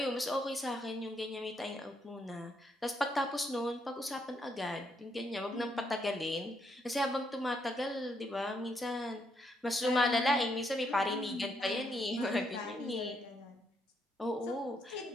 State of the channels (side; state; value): both; normal; correlation 0.76